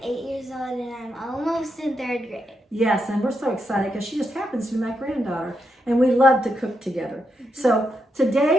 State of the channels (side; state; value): both; normal; correlation 0.83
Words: 8 years old and I'm almost in 3rd grade. Yes, and we're so excited because she just happens to be my granddaughter and we love to cook together. So